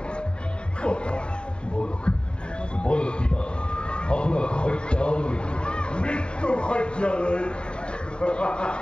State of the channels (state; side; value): late; right; 0.052 ms